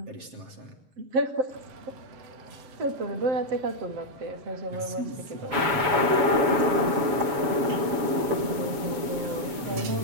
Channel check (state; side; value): late; left; 7.2 ms